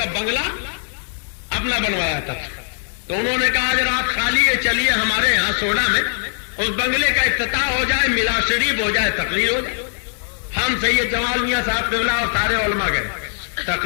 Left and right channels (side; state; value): right; silent; 62 dB below the other